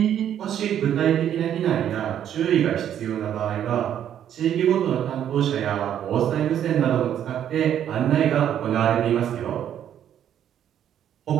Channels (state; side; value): quieter; left; 10.1 dB